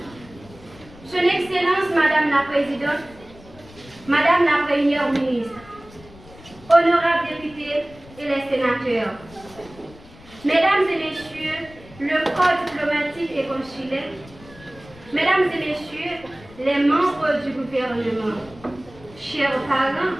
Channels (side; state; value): left; noise; rumble, 22 dB below the sound